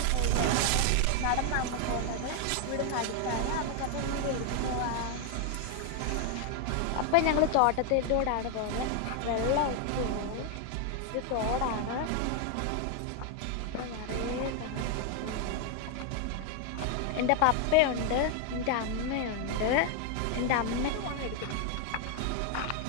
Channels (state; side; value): different; both; correlation 0.01